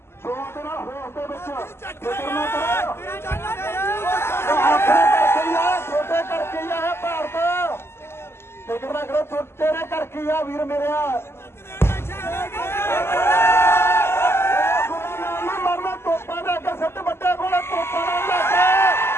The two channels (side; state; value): right; late; 0.12 ms